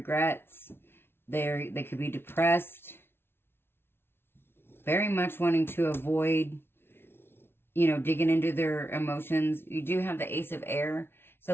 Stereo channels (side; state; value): right; late; 0.11 ms